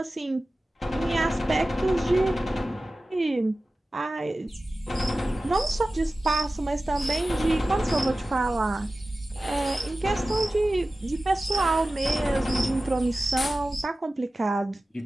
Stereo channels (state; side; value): normal; both; correlation 0.96